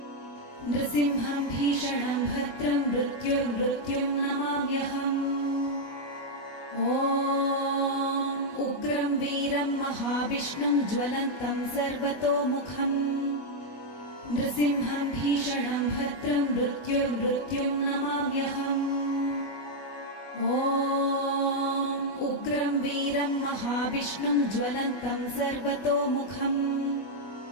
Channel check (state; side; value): late; right; 20 ms